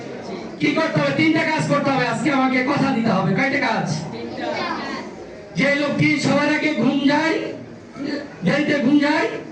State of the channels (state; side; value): identical; both; correlation 1.00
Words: কি করতে হবে? 3টা কাজ করতে হবে। আজকে আমাকে কথা দিতে হবে। কয়টা কাজ? যে লোকটি সবার আগে ঘুম যায়, দেরিতে ঘুম যায়